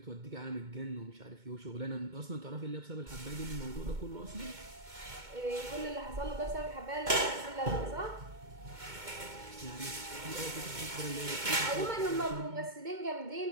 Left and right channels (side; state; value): left; late; 2.2 ms